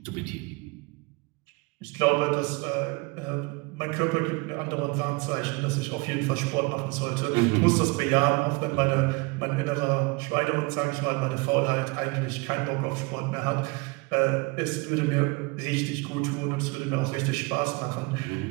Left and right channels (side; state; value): left; quieter; 27.0 dB